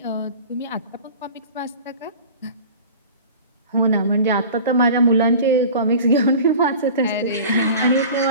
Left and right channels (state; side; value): inverted; both; correlation -0.39